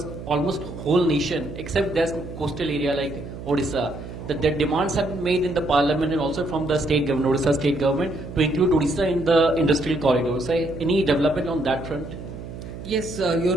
almost whole nation, except there's coastal area like Odisha. The demands have been made in the parliament and also from the state government, Odisha state government, to include Odisha in the industrial corridors. Any development on that front? Yes, you're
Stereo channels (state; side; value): noise; right; hum, 11 dB below the sound